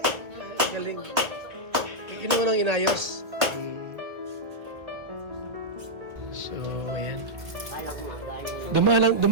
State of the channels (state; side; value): late; left; 1.4 ms